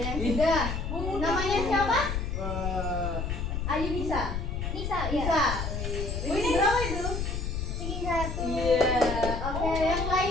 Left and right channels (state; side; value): noise; left; rumble, 3 dB below the sound